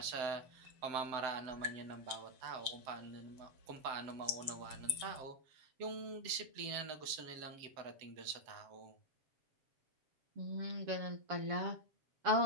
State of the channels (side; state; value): left; late; 7.3 ms